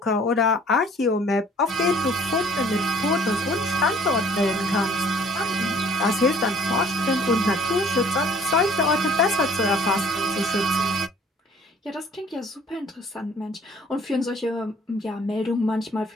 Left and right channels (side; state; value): both; normal; correlation 0.55